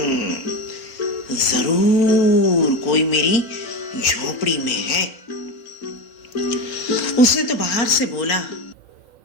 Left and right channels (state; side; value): late; right; 3.9 ms